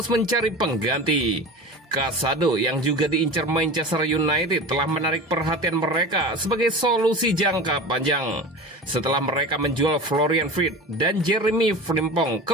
mencari pengganti. Casado yang juga diincar Manchester United telah menarik perhatian mereka sebagai solusi jangka panjang. Setelah mereka menjual Florian Wirtz dan Jeremy Frimpong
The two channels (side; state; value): both; normal; correlation 0.32